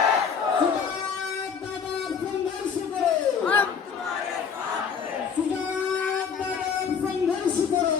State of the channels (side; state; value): right; quieter; 6.5 dB